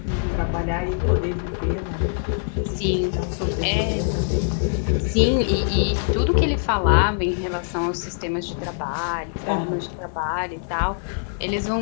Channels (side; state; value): right; silent; 60 dB below the other